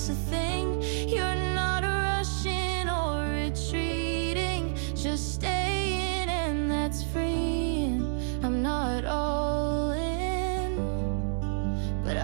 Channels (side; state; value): left; silent; 59 dB below the other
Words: a thing. You're not rushing or retreating, just staying, and that's freeing. I'm not all in, but